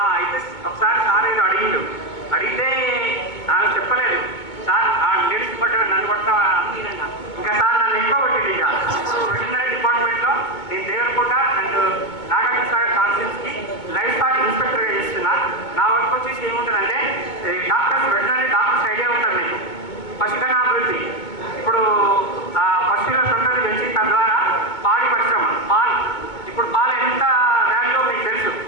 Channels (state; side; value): late; right; 2.2 ms